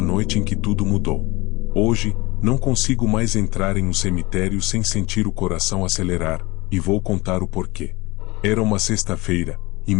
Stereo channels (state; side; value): quieter; right; 22.5 dB